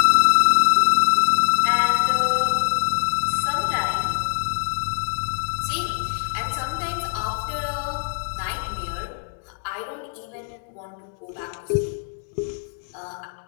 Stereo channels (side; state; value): right; silent; digital silence